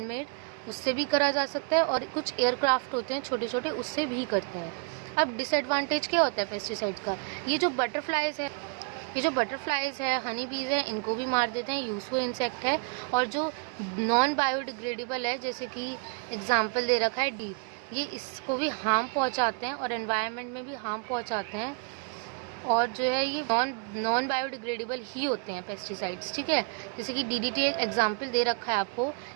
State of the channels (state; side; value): quieter; left; 39.1 dB